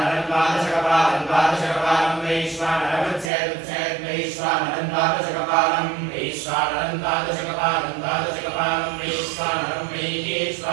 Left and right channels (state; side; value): drops out; left; at 3.3 s